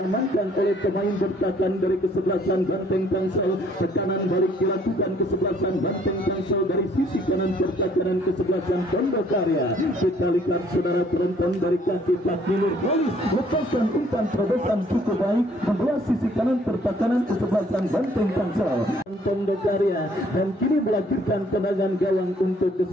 oleh pemain bertahan dari kesebelasan Banteng Tangsel. Tekanan balik dilakukan kesebelasan Banteng Tangsel dari sisi kanan pertahanan kesebelasan Pondok Karya. Kita lihat saudara penonton dari kaki Fahmi Nurholis lepaskan umpan terobosan cukup baik membelah sisi kanan pertahanan kesebelasan Banteng Tangsel Pondok Karya, dan kini melahirkan tendangan gawang untuk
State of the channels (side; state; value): both; normal; correlation 0.61